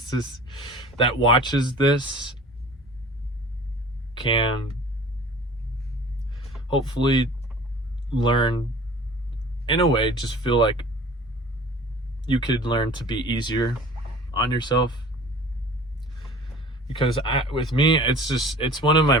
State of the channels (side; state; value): both; normal; correlation 0.44